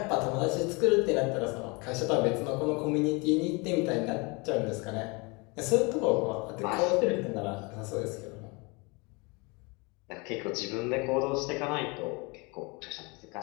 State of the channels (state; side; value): quieter; right; 28.4 dB